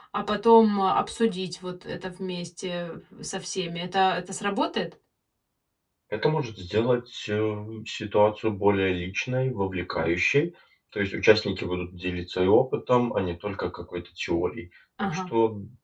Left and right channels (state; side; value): identical; both; correlation 1.00